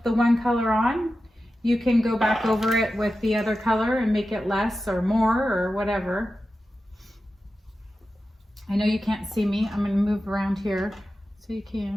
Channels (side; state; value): both; normal; correlation 0.92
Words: the one color on, you can go back over it with the other color and make it less or more or whatever. I know you can't see me. I'm going to move around here so you